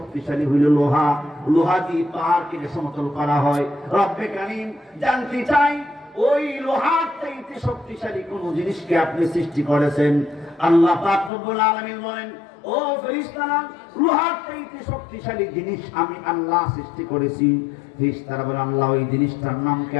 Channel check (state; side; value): drops out; right; at 11.3 s